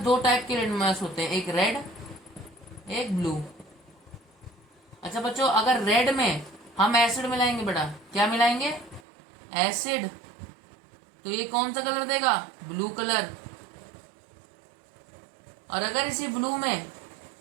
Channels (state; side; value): drops out; left; at 9.0 s